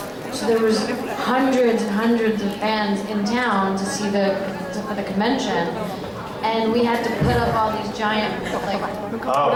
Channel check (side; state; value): both; identical; correlation 1.00